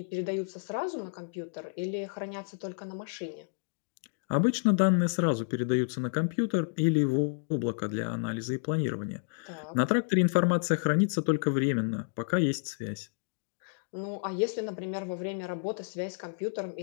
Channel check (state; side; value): silent; right; digital silence